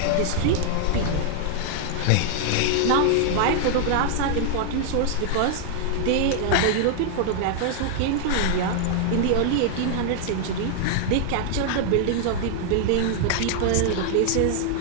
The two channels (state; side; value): different; both; correlation 0.00